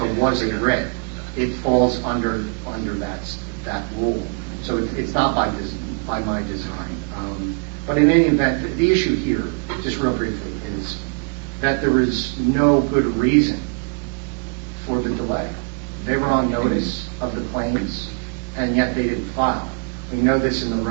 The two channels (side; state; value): left; quieter; 36.9 dB